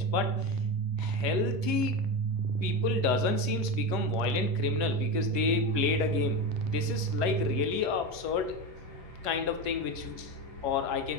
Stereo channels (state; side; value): late; left; 10 ms